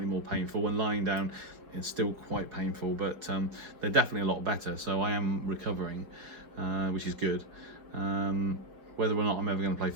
more painful. When lying down, it's still quite painful, but they're definitely a lot better. So I am recovering, which is good. Whether or not I'm ever going to play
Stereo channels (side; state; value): left; late; 5.0 ms